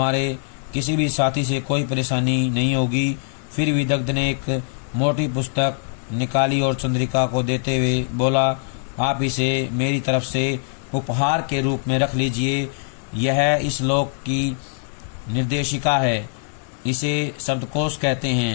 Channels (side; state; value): right; silent; digital silence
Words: किसी भी साथी से कोई परेशानी नहीं होगी। फिर विदग्ध ने एक मोटी पुस्तक निकाली और चंद्रिका को देते हुए बोला, आप इसे मेरी तरफ से उपहार के रूप में रख लीजिए। यह इस लोक की निर्देशिका है। इसे शब्दकोश कहते